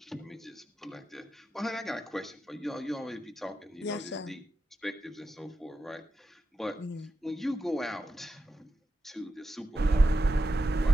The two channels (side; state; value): both; normal; correlation 0.89